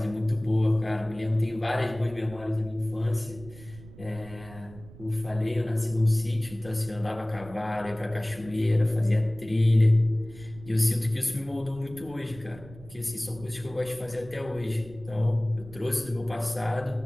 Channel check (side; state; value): right; noise; rumble, 18 dB below the sound